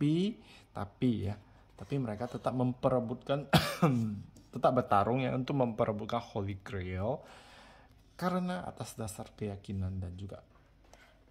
mereka tetap memperebutkan tetap bertarung ya untuk memperebutkan Holy Grail. Karena atas dasar keyakinan dan juga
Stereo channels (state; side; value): identical; both; correlation 1.00